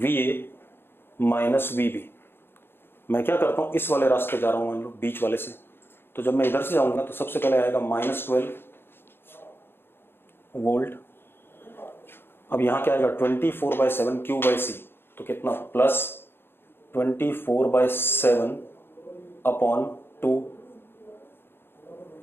A minus V B. मैं क्या करता हूं, इस वाले रास्ते जा रहा हूं मान लो, बीच वाले से, तो जब मैं इधर से जाऊंगा तो सबसे पहले आएगा -12 वोल्ट। अब यहां क्या आएगा 24/7 Q/C, तो कितना +24/7 अपॉन 2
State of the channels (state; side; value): late; right; 0.11 ms